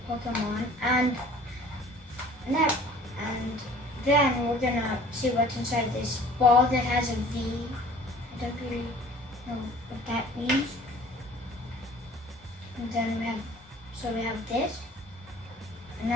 Pokemon, and then we're gonna see what's inside this ball that has a V. I don't really know what that means. And then we have this,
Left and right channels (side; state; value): both; normal; correlation 0.50